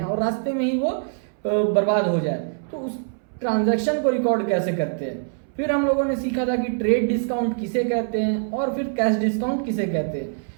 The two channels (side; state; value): left; silent; 63 dB below the other